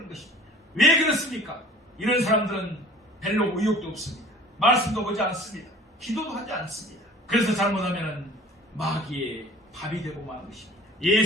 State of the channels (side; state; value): both; normal; correlation 0.47